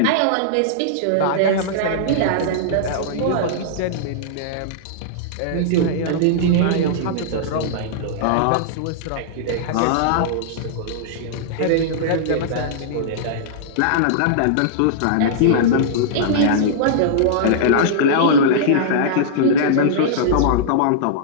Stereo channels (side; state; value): both; different; correlation -0.02